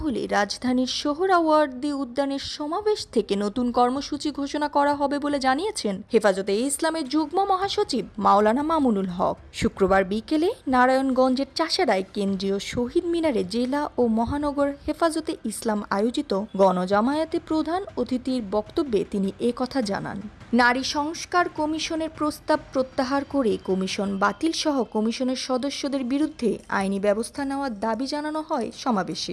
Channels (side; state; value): both; identical; correlation 1.00